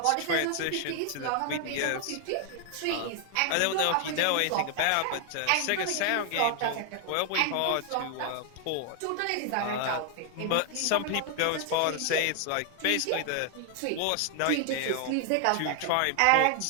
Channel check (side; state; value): both; different; correlation 0.00